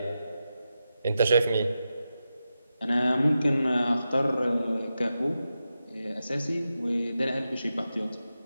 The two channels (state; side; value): inverted; both; correlation -0.90